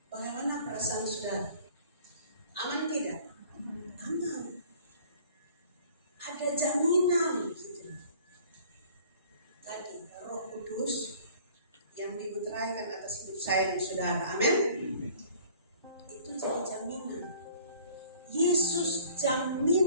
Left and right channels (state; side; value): inverted; both; correlation -0.51